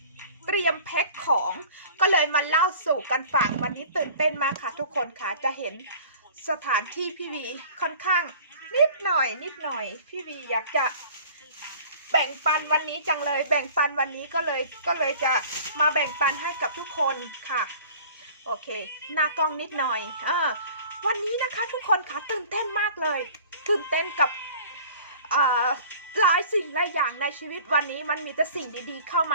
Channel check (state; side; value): inverted; both; correlation -0.46